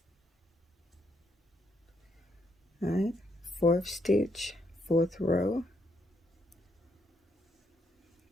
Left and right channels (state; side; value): normal; both; correlation 0.75